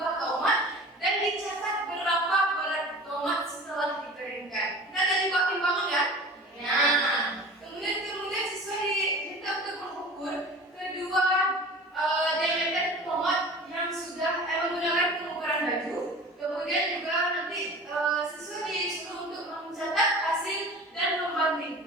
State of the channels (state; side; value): normal; both; correlation 0.39